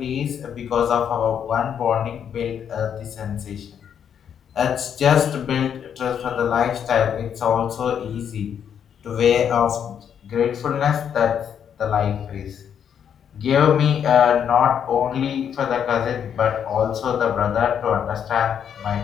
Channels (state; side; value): quieter; right; 8.4 dB